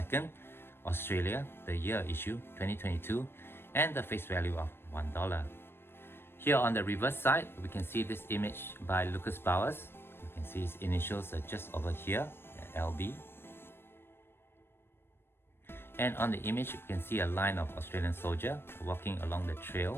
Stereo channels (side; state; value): right; late; 0.11 ms